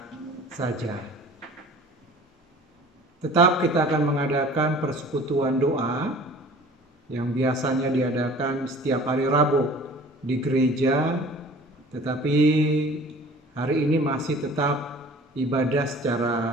saja. Tetap kita akan mengadakan persekutuan doa yang biasanya diadakan setiap hari Rabu di gereja, tetapi hari ini masih tetap ibadah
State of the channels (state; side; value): normal; both; correlation 0.46